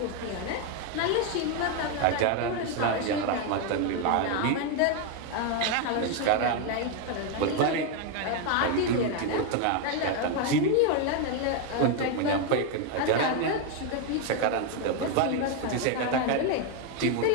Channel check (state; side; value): different; both; correlation 0.01